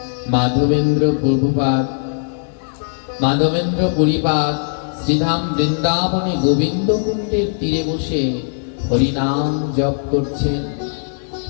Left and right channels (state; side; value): silent; right; digital silence